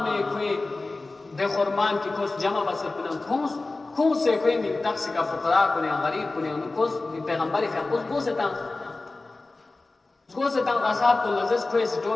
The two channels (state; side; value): quieter; right; 3.3 dB